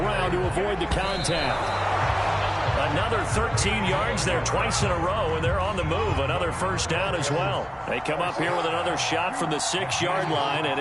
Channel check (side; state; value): both; identical; correlation 1.00